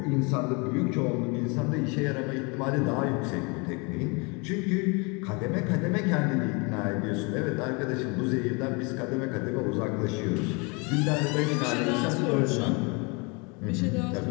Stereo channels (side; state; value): right; quieter; 30.3 dB